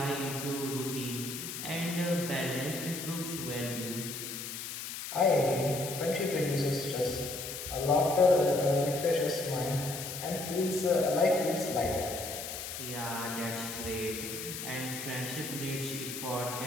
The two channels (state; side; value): noise; left; hiss, 7 dB below the sound